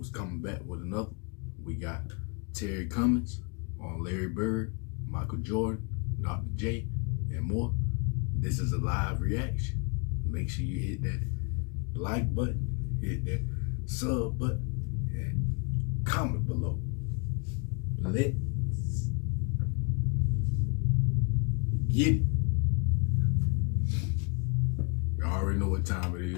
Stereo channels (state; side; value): quieter; right; 34.6 dB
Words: coming back with another. We got Terry Cummings on Larry Bird, Michael Jordan, Dr. J, and more. This is a live reaction. Make sure you hit that like button, hit that sub button, and comment below. Let's get it. You already know what time it